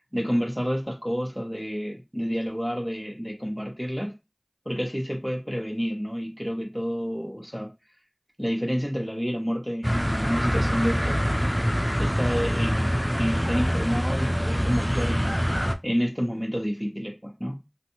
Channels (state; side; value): identical; both; correlation 1.00